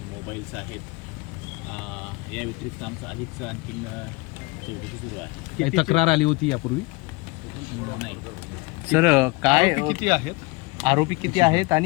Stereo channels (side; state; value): right; quieter; 26.0 dB